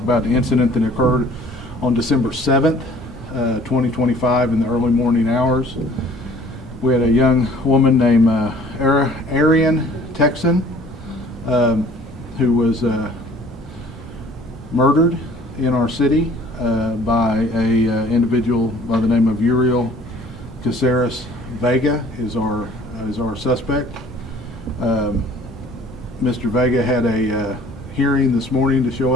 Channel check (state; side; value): normal; both; correlation 0.53